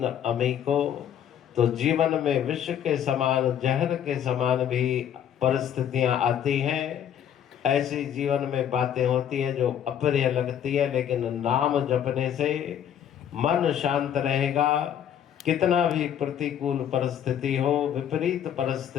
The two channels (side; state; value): right; quieter; 9.6 dB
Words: अमीको। तो जीवन में विष के समान, जहर के समान भी परिस्थितियां आती हैं। ऐसी जीवन में बातें होती है जो अप्रिय लगती है, लेकिन नाम जपने से मन शांत रहेगा। कितना भी प्रतिकूल परिस्थिति हो, विपरीत